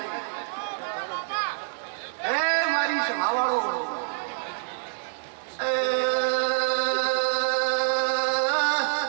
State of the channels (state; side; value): silent; left; 60 dB below the other